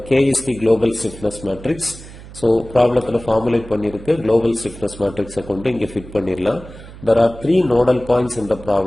K is the global stiffness matrix. So problem formulate பண்ணிருக்கு global stiffness matrix கொண்டு இங்க fit பண்ணிரலாம். There are 3 nodal points in the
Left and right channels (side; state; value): right; noise; hum, 16 dB below the sound